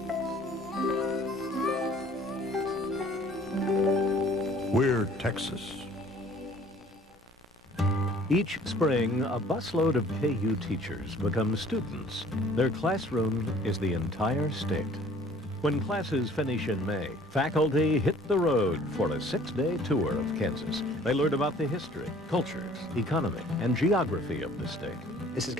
We're Texas. Each spring, a busload of KU teachers become students. Their classroom is the entire state. When classes finish in May, faculty hit the road for a 6-day tour of Kansas. They learn about the history, cultures, economy, and geography of the state. This is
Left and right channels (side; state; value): both; normal; correlation 0.54